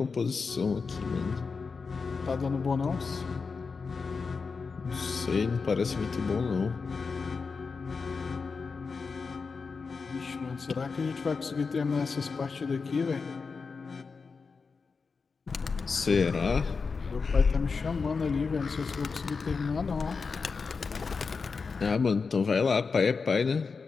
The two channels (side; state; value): right; quieter; 4.9 dB